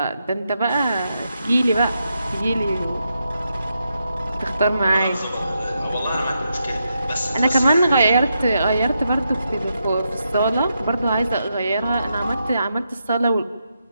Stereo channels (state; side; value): inverted; both; correlation -0.84